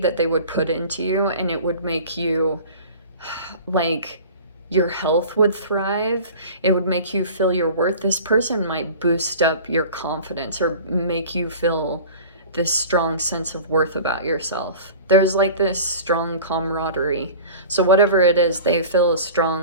they would put into you, and it would make you like, your health would thrive. It would make you feel your worth. This person might boost up your confidence or make you feel this strong sense of worth about yourself. There's like this strong camaraderie. So whatever it is, they feel a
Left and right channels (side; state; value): both; inverted; correlation -0.40